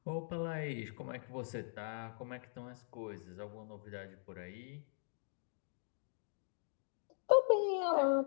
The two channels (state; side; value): silent; right; digital silence